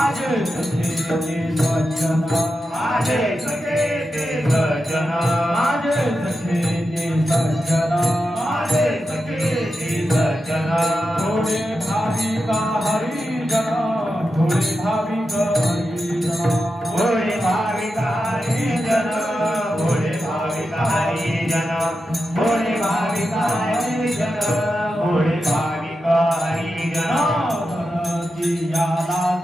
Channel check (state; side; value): normal; both; correlation 0.89